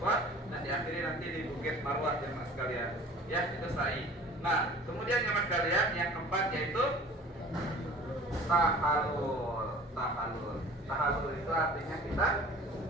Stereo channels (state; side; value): normal; both; correlation 0.45